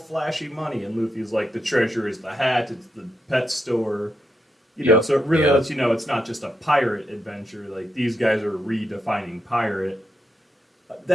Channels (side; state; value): both; normal; correlation 0.83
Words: money, and Luffy's like the treasure is the hat. It's the pet store. Yep. So it really Yeah. lets you know it's not just a pirate adventure. Like these guys are redefining pirate.